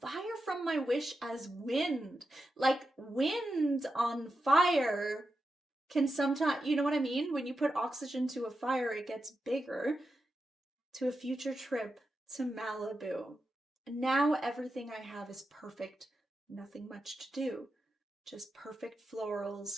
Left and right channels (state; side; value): normal; both; correlation 0.89